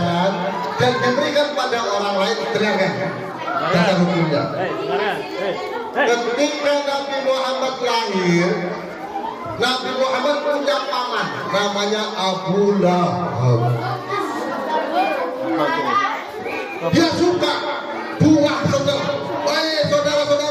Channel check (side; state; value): both; identical; correlation 1.00